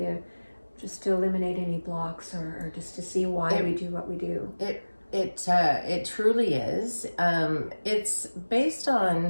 to eliminate any blocks or just to see why we do what we do. It truly is. It's based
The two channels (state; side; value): inverted; both; correlation -1.00